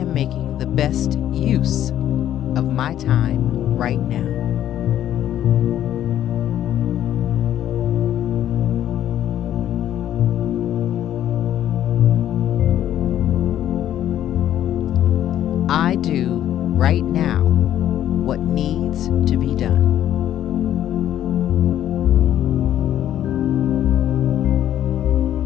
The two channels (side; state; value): right; quieter; 11.5 dB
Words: making the best use of my time right now. I do right now what needs to be done.